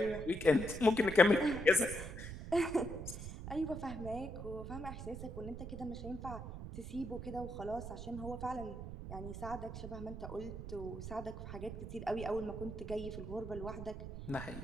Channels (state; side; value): noise; right; rumble, 8 dB below the sound